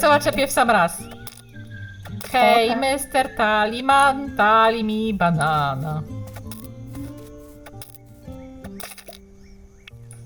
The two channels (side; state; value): both; identical; correlation 1.00